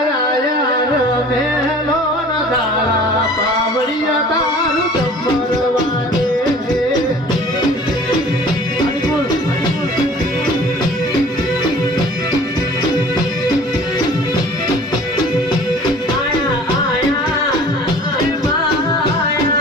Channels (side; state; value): both; normal; correlation 0.47